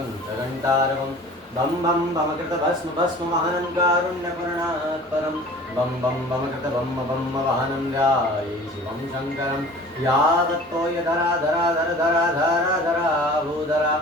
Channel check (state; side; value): normal; both; correlation 0.44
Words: च घण्टारवं बं बं बमकृतभस्म भस्मवाहनं कारुण्यपूर्णात् परं बं बं बमकृतबं बं वाहनं ध्याये शिवं शङ्करं यावत्तोयधरा धरा धर धरा धरा धरा भूधरा